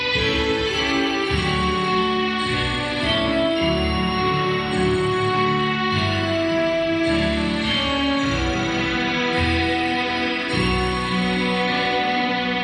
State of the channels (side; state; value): both; identical; correlation 1.00